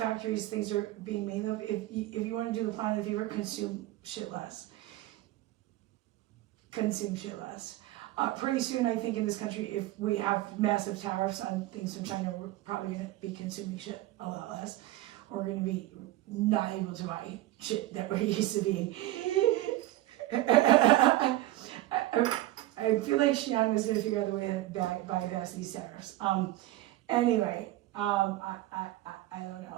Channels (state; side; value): quieter; left; 16.1 dB